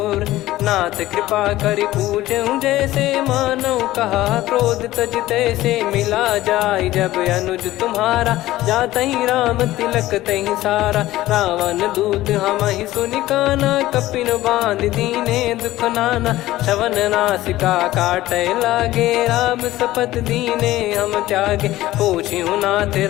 नाथ कृपा करि पूजऊं जैसे, मानव कहा क्रोध तज तैसे। मिला जाय जब अनुज तुम्हारा, जातहि राम तिलक तहि सारा। रावण दूत हमहि सुनि काना, कपिन बांध दीने दुख नाना। श्रवण नासिका काटै लागे, राम शपथ दीने हम त्यागे। पूछिहु नाथ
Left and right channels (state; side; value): quieter; right; 16.0 dB